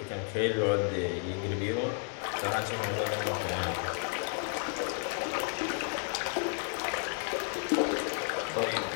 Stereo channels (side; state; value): right; quieter; 38.8 dB